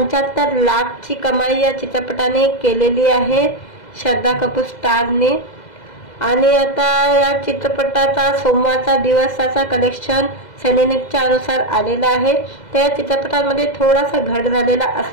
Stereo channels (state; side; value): late; right; 2.0 ms